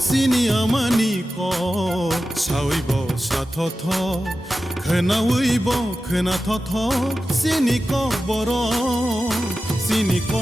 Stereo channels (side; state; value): both; normal; correlation 0.93